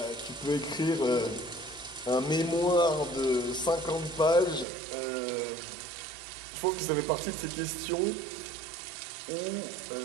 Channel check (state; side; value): drops out; left; at 4.7 s